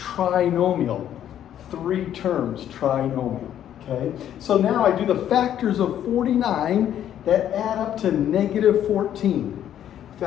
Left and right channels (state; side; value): quieter; right; 10.6 dB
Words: 3 terms, trinomial. Okay, so now I do the factors of 49 that add up to negative 14.